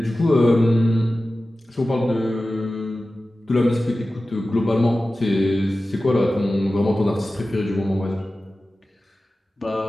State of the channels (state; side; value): normal; both; correlation 0.95